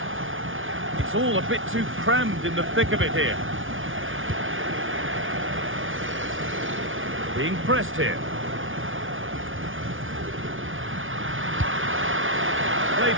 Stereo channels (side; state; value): left; late; 0.57 ms